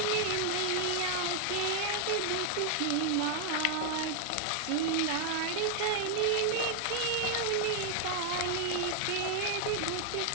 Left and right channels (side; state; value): both; different; correlation 0.00